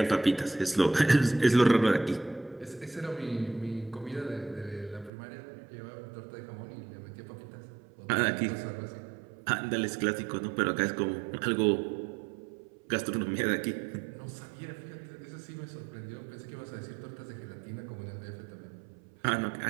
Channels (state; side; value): drops out; left; at 5.1 s